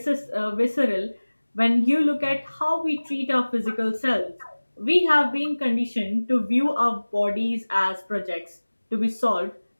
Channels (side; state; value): both; inverted; correlation -1.00